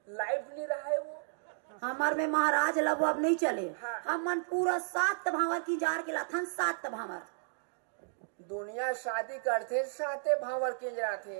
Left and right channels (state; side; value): silent; left; digital silence